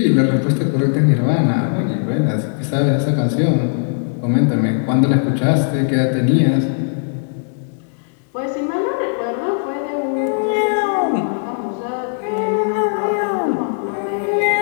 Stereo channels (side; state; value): right; silent; digital silence